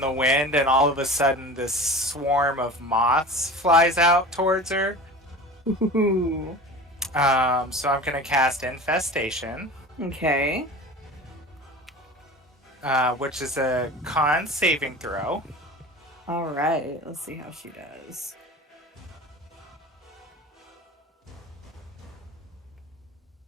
wind, and all of a sudden this swarm of moths flies out towards her. Ooh. So I'm gonna cast Infestation. Okay. Which is a con saving throw. All right. Let's see how she does.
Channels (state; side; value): normal; both; correlation 0.35